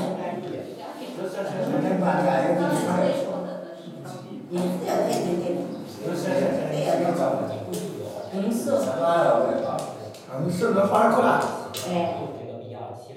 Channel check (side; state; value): both; identical; correlation 1.00